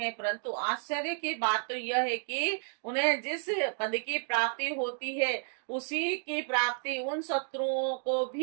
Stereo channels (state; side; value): silent; left; digital silence